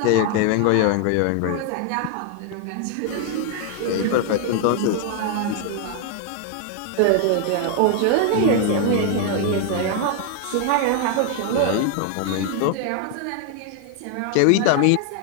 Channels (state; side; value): different; both; correlation 0.00